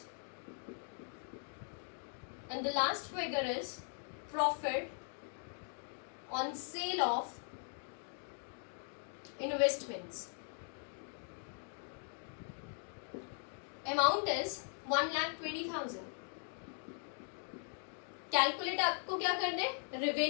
And the last figure is profit on sale of investments. Amount is 1,20,000. Calculate आपको क्या कर दे,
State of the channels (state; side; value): silent; right; 51 dB below the other